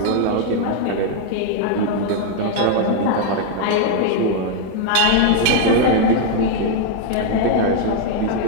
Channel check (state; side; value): different; both; correlation 0.00